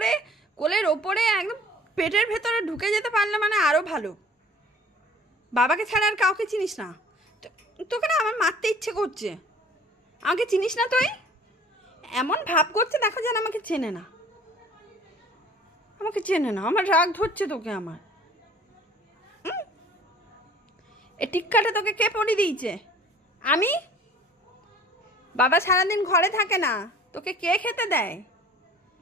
কোলের ওপরে একদম পেটের ভেতরে ঢুকে যেতে পারলে মানে আরও ভালো। বাবাকে ছাড়া আর কাউকে চিনিস না। তোকে না আমার মারতে ইচ্ছে করছে। আমাকে চিনিস না তুই? এমন ভাব করছে দেখো যেন আমাকে চেনে না, আমাকে চেনে না। আমার রাগ ধরছে তোকে আমার। এ টিক্কাটা তোকে কে পরিয়ে দিয়েছে? আমি? বাবা সারাদিন ঘরে থাকে না, তোকে কে খেতে দেয়?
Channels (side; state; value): both; normal; correlation 0.50